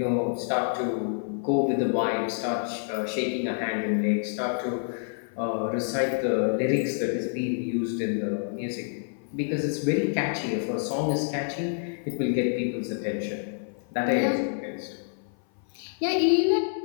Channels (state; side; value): silent; right; 55 dB below the other